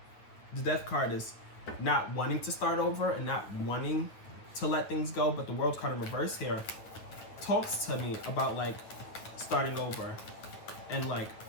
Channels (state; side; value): late; right; 9.3 ms